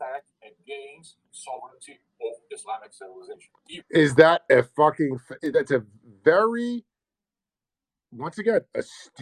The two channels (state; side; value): identical; both; correlation 1.00